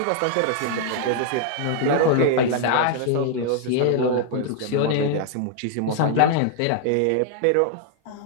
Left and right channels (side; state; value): both; different; correlation 0.00